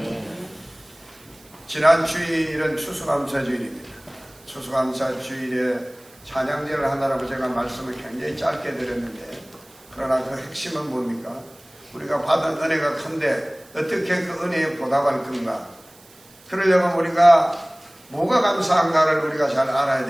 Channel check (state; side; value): noise; right; hiss, 26 dB below the sound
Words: 지난 주일은 추수감사주일입니다. 추수감사주일에 찬양제를 하느라고 제가 말씀을 굉장히 짧게 드렸는데, 그러나 그 핵심은 뭡니까? 우리가 받은 은혜가 큰데 어떻게 그 은혜에 보답할 건가? 그러려면 우리가 뭐가 감사한가를 우리가 잘 알아야